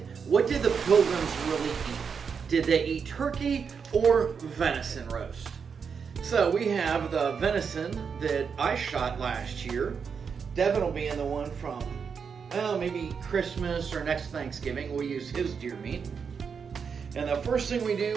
what did the pilgrims really eat? Did they eat turkey or venison roast? So we have the venison that I shot last year. Devin will be in the one from, well, maybe Christmas or next Thanksgiving. We'll use his deer meat. And the first thing we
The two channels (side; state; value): left; quieter; 6.2 dB